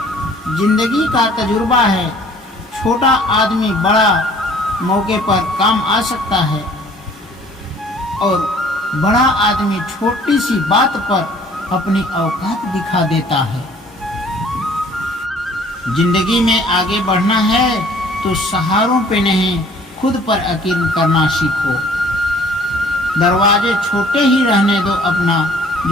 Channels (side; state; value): both; normal; correlation 0.54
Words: जिंदगी का तजुर्बा है, छोटा आदमी बड़ा मौके पर काम आ सकता है और बड़ा आदमी छोटी सी बात पर अपनी औकात दिखा देता है। जिंदगी में आगे बढ़ना है तो सहारों पे नहीं, खुद पर यकीन करना सीखो। दरवाजे छोटे ही रहने दो अपना,